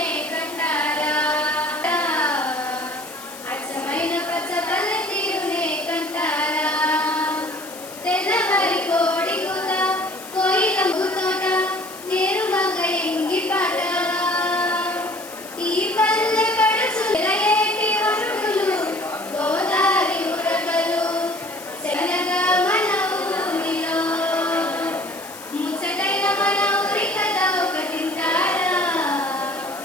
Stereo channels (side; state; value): left; noise; hiss, 16 dB below the sound